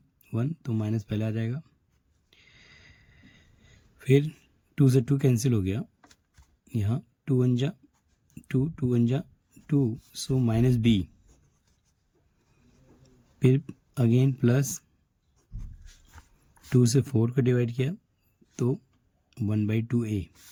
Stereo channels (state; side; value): identical; both; correlation 1.00